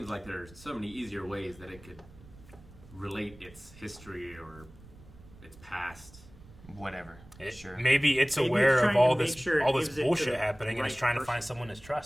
like there's so many easier ways that it could relate its history or its past. Whatever. Sure. Maybe it's aware of all this bullshit happening, and it's trying to find someone to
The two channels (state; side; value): noise; right; rumble, 21 dB below the sound